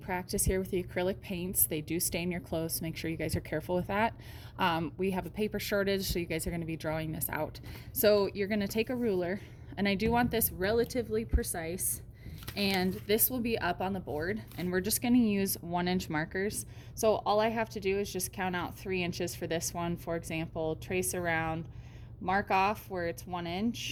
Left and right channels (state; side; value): identical; both; correlation 1.00